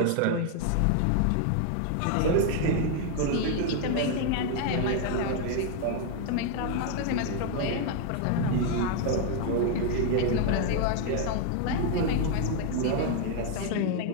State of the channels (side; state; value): both; different; correlation 0.00